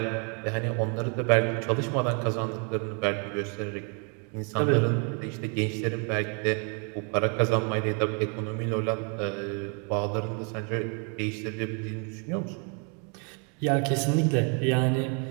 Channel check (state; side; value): quieter; left; 37.0 dB